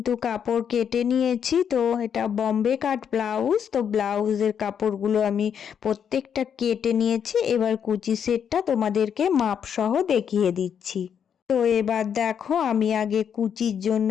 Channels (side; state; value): right; quieter; 8.0 dB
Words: কাপড় কেটে নিয়েছি। তো এটা বম্বে কাট ব্লাউজ। তো ব্লাউজের কাপড়গুলো আমি প্রত্যেকটা কেটে নিয়েছি। এবার কুচি সেটটা তোমাদেরকে মাপ সহ দেখিয়ে দিচ্ছি। তো এবার দেখো আমি আগে কুচির জন্য